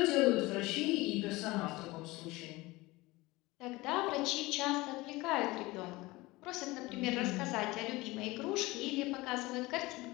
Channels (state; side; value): quieter; right; 21.1 dB